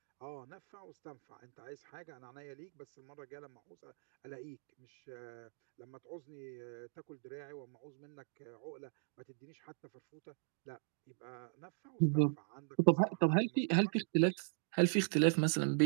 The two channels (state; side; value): silent; left; digital silence